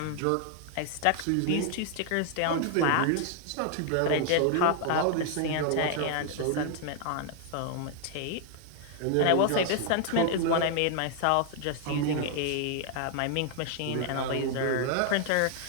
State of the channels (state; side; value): different; both; correlation 0.00